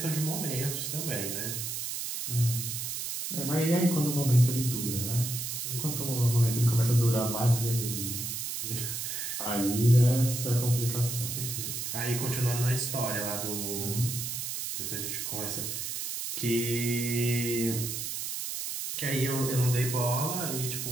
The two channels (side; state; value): right; noise; hiss, 4 dB below the sound